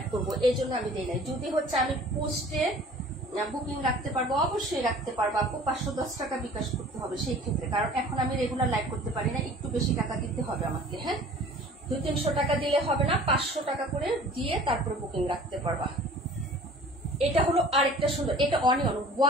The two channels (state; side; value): normal; both; correlation 0.47